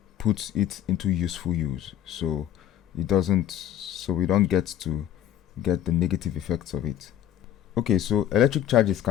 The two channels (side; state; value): right; quieter; 11.0 dB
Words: put it into useful use so we don't get the negative effects of it. Okay, so electric charges